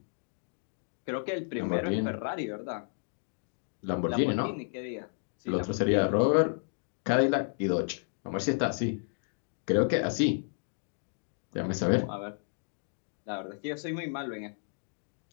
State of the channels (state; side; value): silent; right; digital silence